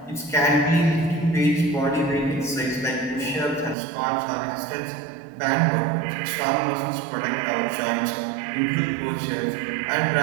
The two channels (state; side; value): drops out; left; at 3.8 s